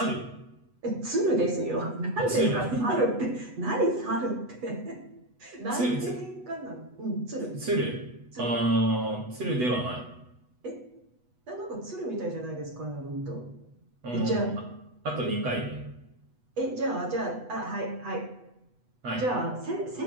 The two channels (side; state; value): left; late; 8.1 ms